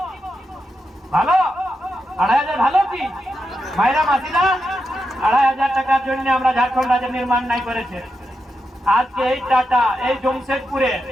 ভালো? ২৫০০ ভালো কি? মায়েরা মাসিরা ২৫০০ টাকার জন্য আমরা ঝাড়খণ্ড রাজ্যের নির্মাণ নাই করেছে। আজকে এই টাটা, এই জমশেদপুরে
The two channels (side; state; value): both; normal; correlation 0.87